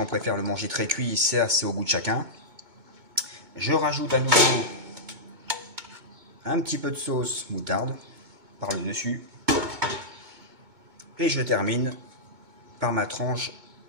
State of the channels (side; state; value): left; late; 2.2 ms